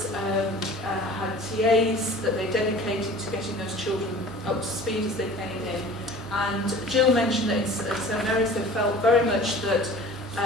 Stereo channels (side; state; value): both; normal; correlation 0.44